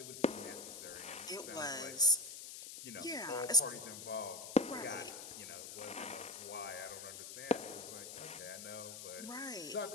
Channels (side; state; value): left; noise; hiss, 10 dB below the sound